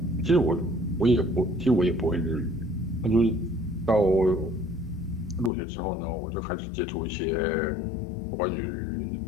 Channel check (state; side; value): drops out; right; at 5.5 s